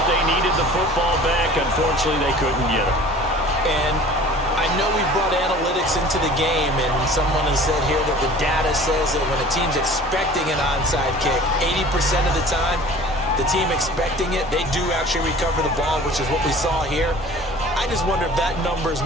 they needed the football back. Unfortunately, they couldn't get it. And I know we brought analytics into the game, and someone has said here that the data says that when a team's expecting an onside kick, 80% of the time, the team expecting it, they do actually recover the ball, which is what we saw here. I just wonder if that number is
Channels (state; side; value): normal; both; correlation 0.45